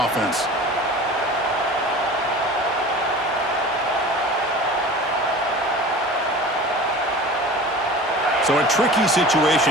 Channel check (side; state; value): both; normal; correlation 0.38